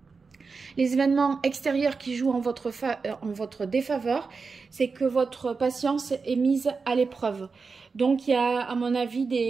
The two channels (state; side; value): quieter; left; 4.7 dB